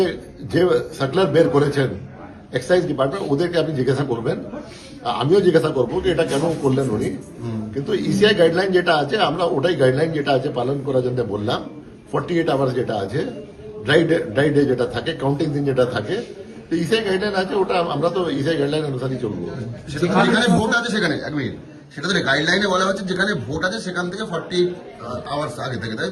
যে সার্কুলার বের করেছেন এক্সাইজ ডিপার্টমেন্ট, ওদেরকে আপনি জিজ্ঞাসা করবেন, আমিও জিজ্ঞাসা করবো যে এটা কেন করলেন উনি। কিন্তু ইসিআই গাইডলাইন যেটা আছে, আমরা ওটাই গাইডলাইন যেটা আছে পালন করার জন্য বললাম। 48 আওয়ার্স যেটা আছে, ড্রাই ডে যেটা থাকে, কাউন্টিং দিন যেটা থাকে, তো ইসিআই গাইডলাইন আছে, ওটা আমরা তো ইসিআই গাইডলাইন অনুসারেই চলবো। যেখানে ভোট আছে সেখানে এক মিনিট, সেটা তো গাইডলাইনে বলা হচ্ছে যেখানে ভোট আছে সেখান থেকে 40 আওয়ার্স আগে থেকে, তাই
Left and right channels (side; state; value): both; identical; correlation 1.00